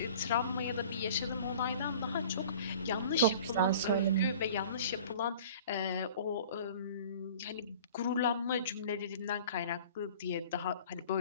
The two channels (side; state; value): both; inverted; correlation -0.45